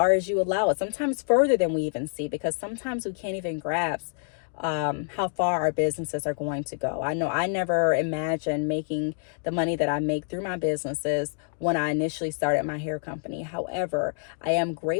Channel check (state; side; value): silent; right; digital silence